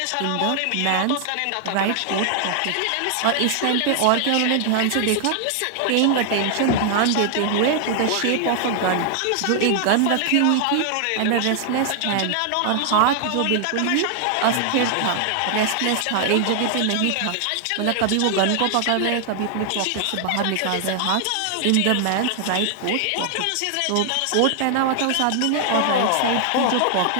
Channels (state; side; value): different; both; correlation 0.00